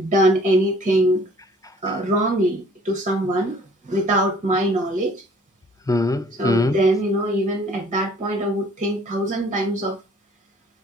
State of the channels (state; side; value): normal; both; correlation 0.55